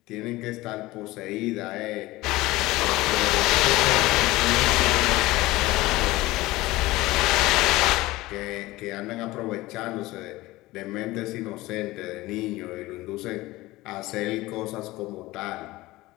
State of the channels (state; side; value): quieter; right; 19.0 dB